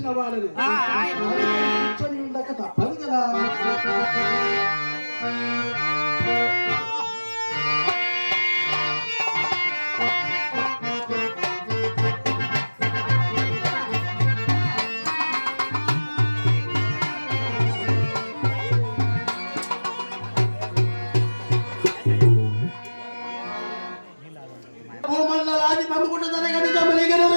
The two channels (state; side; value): inverted; both; correlation -1.00